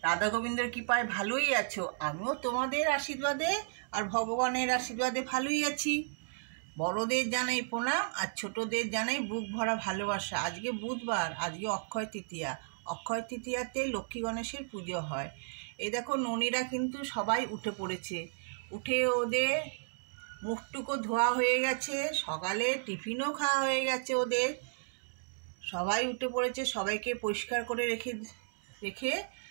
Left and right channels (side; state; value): left; silent; digital silence